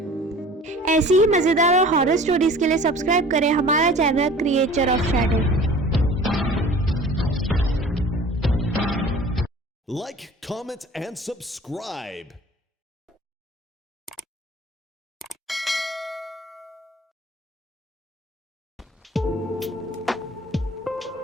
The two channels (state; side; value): normal; both; correlation 0.45